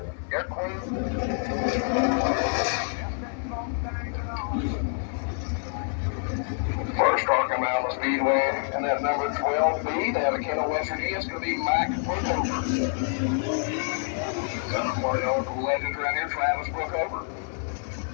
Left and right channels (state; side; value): silent; right; 60 dB below the other